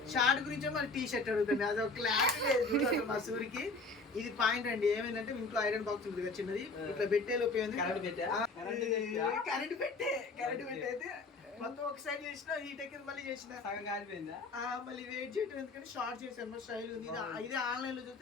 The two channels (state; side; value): quieter; right; 3.5 dB